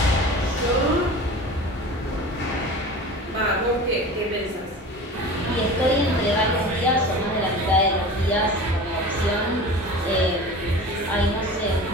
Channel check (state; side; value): normal; both; correlation 0.36